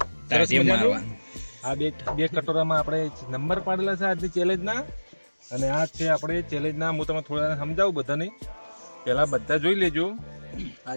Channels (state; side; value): inverted; both; correlation -1.00